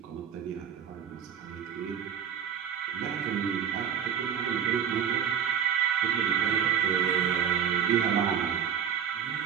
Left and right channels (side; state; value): left; quieter; 8.4 dB